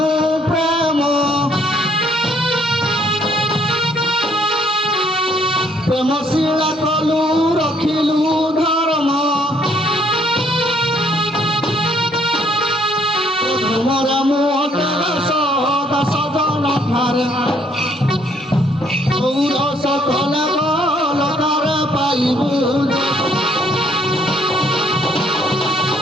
প্রেম প্রেম শিলা কলু রখিলু ধর্ম মোরা মুখ দশ জন ঠারে গৌর সকল বলকার পাইবু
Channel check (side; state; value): both; normal; correlation 0.66